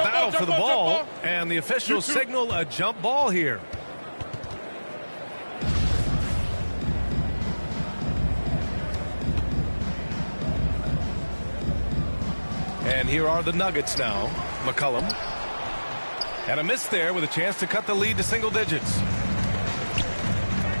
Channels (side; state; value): both; inverted; correlation -1.00